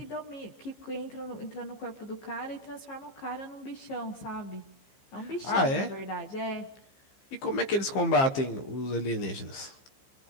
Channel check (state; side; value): late; right; 15 ms